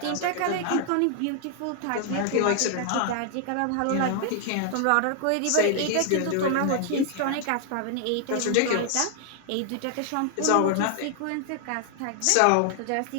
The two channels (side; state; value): both; different; correlation 0.00